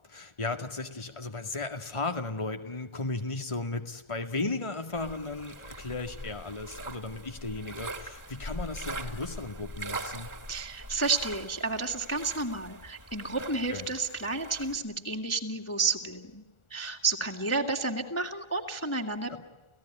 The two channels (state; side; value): late; right; 1.4 ms